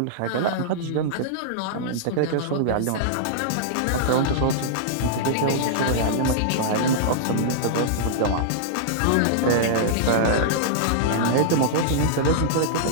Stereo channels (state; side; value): different; both; correlation -0.02